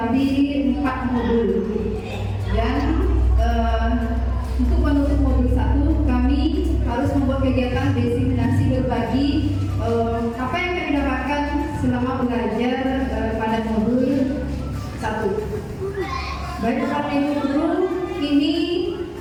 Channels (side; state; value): both; identical; correlation 1.00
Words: 4 modul. Dan untuk menutup modul 1 kami harus membuat kegiatan diseminasi berbagi apa yang kami dapatkan selama belajar pada modul 1. Baik Bapak Ibu guru, ini